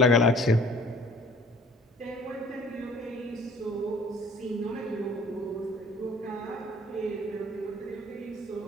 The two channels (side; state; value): both; normal; correlation 0.52